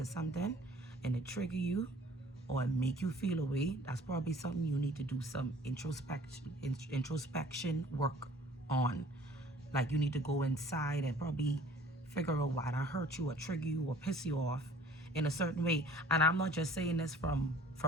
something, and it trigger you or make you feel a way, that's probably something you need to do some introspection work on. Like, you need to go inside and probably figure out why that hurt you or trigger you or piss you off in a certain way. And I'm not just saying this from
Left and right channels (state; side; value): normal; both; correlation 0.52